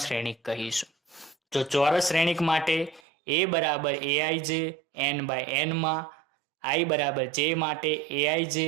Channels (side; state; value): left; drops out; at 3.0 s